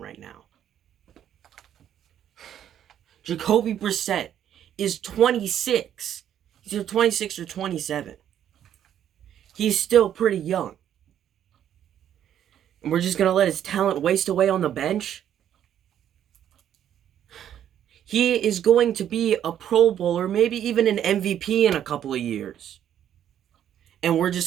now. Jacoby Brissett is 26. He's either 26 or 27. He's still pretty young. And we're just going to let his talent waste away on the bench? He is going to be a Pro Bowler, maybe even an MVP in a couple of years. And we're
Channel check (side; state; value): left; quieter; 10.2 dB